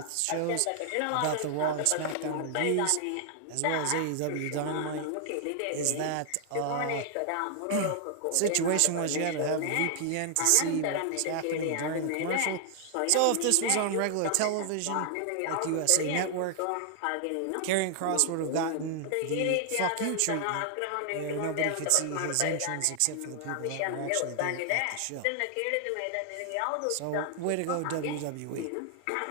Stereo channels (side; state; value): both; different; correlation 0.00